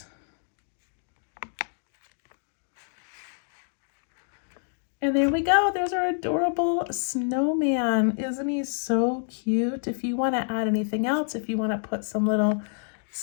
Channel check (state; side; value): silent; right; 60 dB below the other